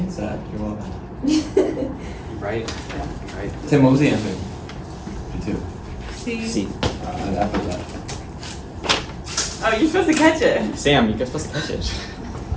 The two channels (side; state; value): both; identical; correlation 1.00